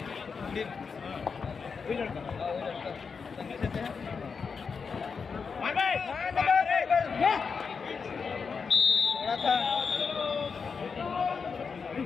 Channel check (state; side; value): quieter; right; 5.5 dB